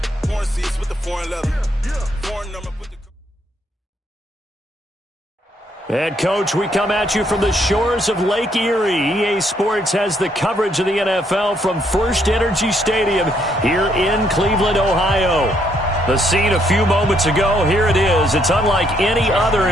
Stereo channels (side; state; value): both; normal; correlation 0.72